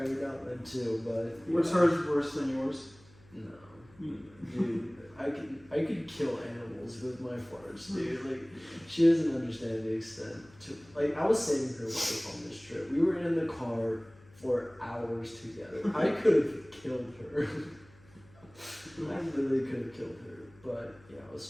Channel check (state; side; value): noise; left; hum, 26 dB below the sound